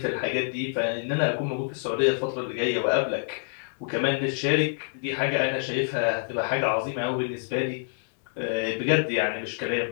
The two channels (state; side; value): silent; right; digital silence